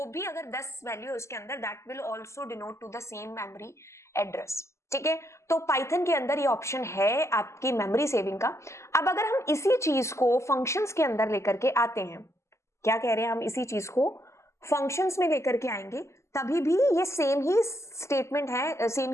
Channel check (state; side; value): late; right; 0.13 ms